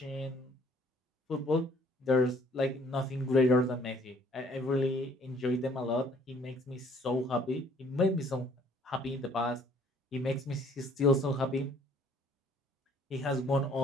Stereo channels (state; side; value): normal; both; correlation 0.59